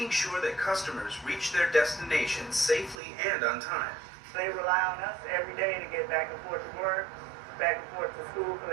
sure that customers reach their destinations safely and on time. They rely on us every day to get back and forth to work, back and forth to school for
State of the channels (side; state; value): left; drops out; at 3.0 s